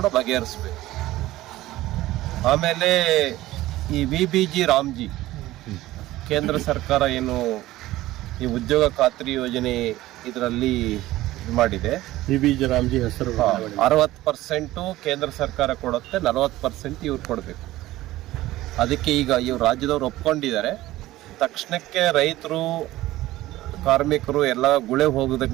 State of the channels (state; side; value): quieter; left; 16.4 dB